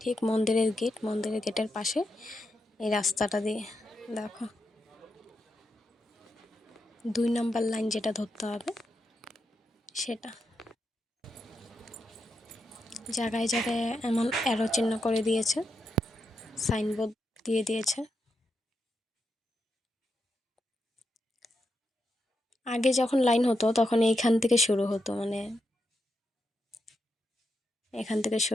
ঠিক মন্দিরের গেটের পাশে এই রাস্তাটা দিয়ে। দেখো 2 নম্বর লাইন যেটা ধরতে হবে সেটা। জায়গায় জায়গায় এমন অ্যারো চিহ্ন করে দিয়েছে, সাইনবোর্ড দিয়ে দিয়েছে। আগে যখন লাইন হতো তখন এইখান থেকে শুরু হতো, মানে এখান থেকে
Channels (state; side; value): normal; both; correlation 0.85